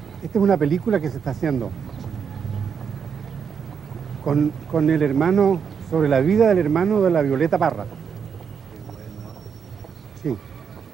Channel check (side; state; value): left; quieter; 6.8 dB